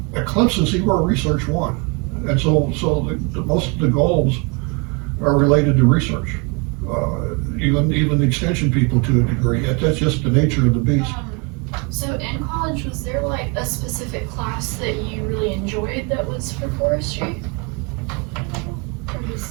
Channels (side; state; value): left; quieter; 31.0 dB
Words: at Clemson, see, we're a research one. And so most of the goals are related to research. Even the extension people to a degree. That's just the nature of the beast. So in college, was there like a specific class that you really enjoyed that was for forestry?